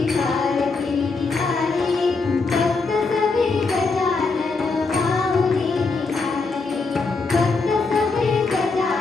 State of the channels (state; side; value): quieter; right; 4.1 dB